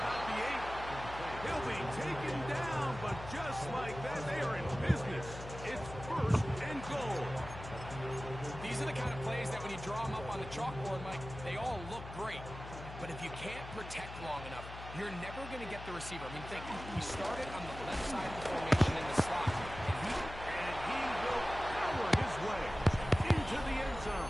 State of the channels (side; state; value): left; noise; hum, 11 dB below the sound